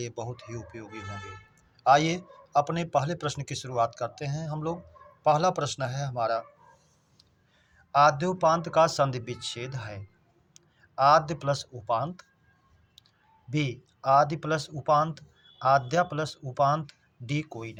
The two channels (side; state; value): both; identical; correlation 1.00